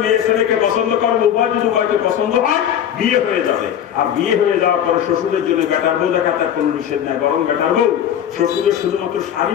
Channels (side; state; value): right; quieter; 9.8 dB